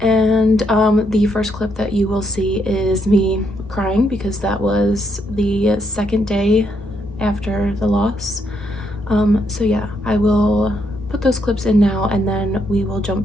And the first clip that you will see is me crying because that was the second day after the loss. So yeah, I will put those clips in now and then we will jump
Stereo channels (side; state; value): both; normal; correlation 0.76